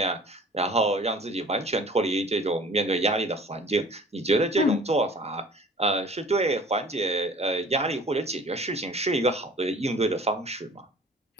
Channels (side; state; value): both; normal; correlation 0.47